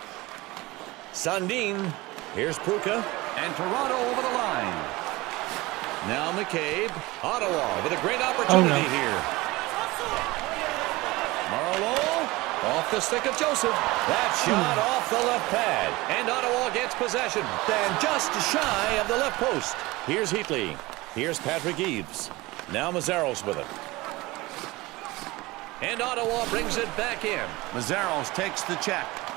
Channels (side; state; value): left; quieter; 21.0 dB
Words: Sundin. Here's Pruka. And Toronto over the line. Now McCabe. Ottawa with a great opportunity here. Marlowe off the stick of Joseph. That shot off the left pad. And Ottawa gets possession. Then just shy of the left post. Here's Heatley. Here's Patrick Eaves. Now Mazzaros with it. And Ottawa brings it back in. Mazzaros takes the check.